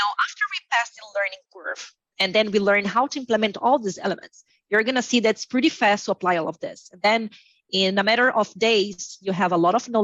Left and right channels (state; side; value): identical; both; correlation 1.00